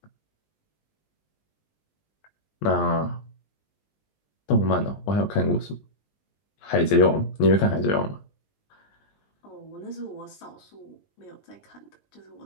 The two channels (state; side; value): late; right; 19 ms